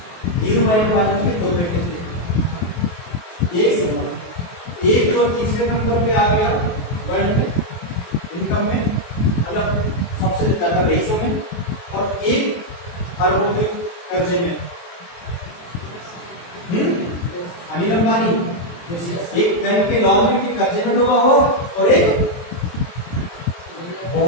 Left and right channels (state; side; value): late; right; 23 ms